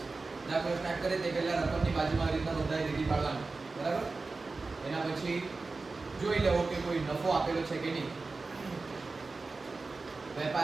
દાખલો સ્ટાર્ટ કરે તે પહેલા રકમની બાજુમાં આવી રીતના નોંધાઈ લીટી પાડવાની. બરાબર? એના પછી જોઈ લેવો કે કોઈ નફો આપેલો છે કે નહીં.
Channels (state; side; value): quieter; left; 3.8 dB